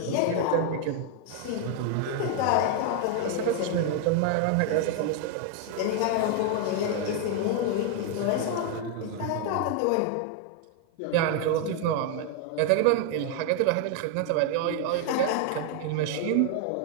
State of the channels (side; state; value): both; different; correlation 0.00